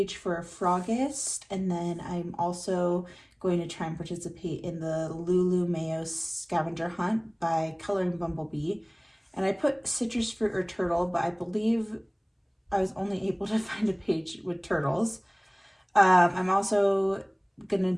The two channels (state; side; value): identical; both; correlation 1.00